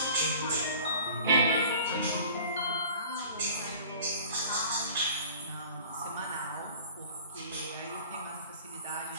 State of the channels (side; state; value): both; inverted; correlation -0.44